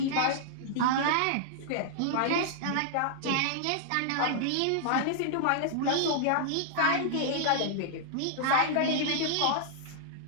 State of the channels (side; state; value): both; different; correlation -0.01